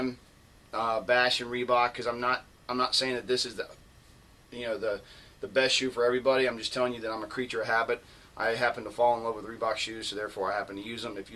bashing Reebok, because I'm not saying that this is the best shoe for everybody. I'm just telling you that I'm a creature of habit. I happen to fall in love with Reebok shoes, so therefore I happen to use them. If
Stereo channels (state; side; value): identical; both; correlation 1.00